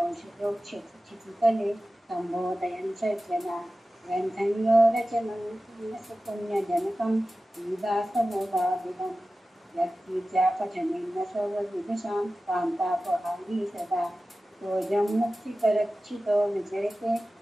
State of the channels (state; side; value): normal; both; correlation 0.95